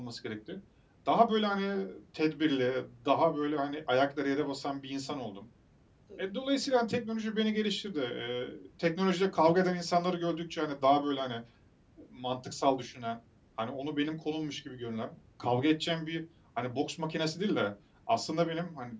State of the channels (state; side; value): identical; both; correlation 1.00